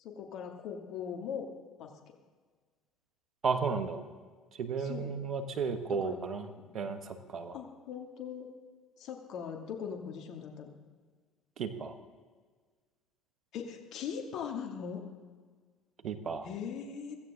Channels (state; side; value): normal; both; correlation 0.47